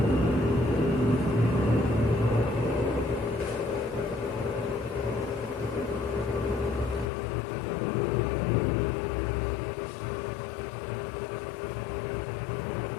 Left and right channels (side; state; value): right; drops out; at 7.1 s